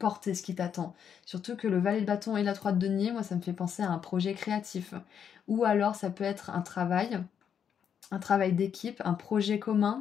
ce qui t'attend. » Surtout que le valet de bâton et la 3 de denier, moi, ça me fait penser à un projet créatif. Ou alors, ça peut être un travail d'équipe, un projet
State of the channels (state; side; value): quieter; right; 8.0 dB